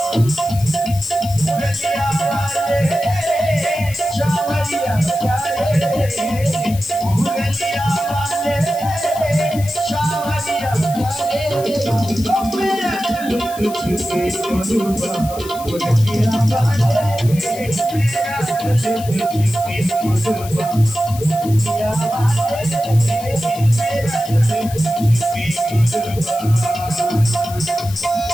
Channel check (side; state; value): left; noise; hiss, 15 dB below the sound